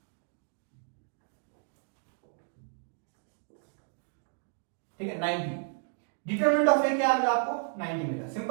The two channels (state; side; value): silent; left; 56 dB below the other